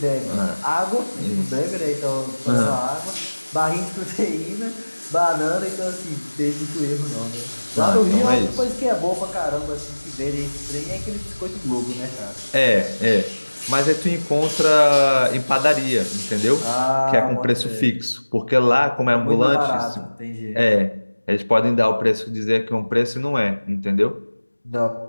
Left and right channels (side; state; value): both; inverted; correlation -1.00